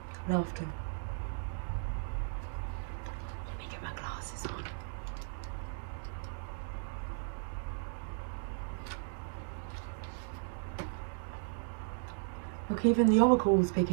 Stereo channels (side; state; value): left; silent; digital silence